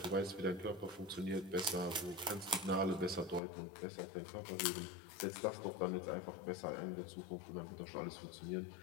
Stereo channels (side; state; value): right; drops out; at 3.4 s